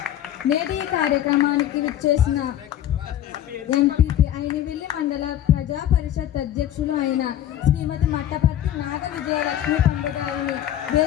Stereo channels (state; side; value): quieter; right; 11.5 dB